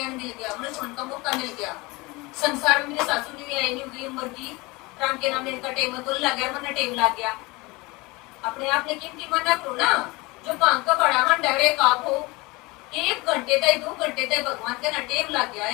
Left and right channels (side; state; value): right; quieter; 23.8 dB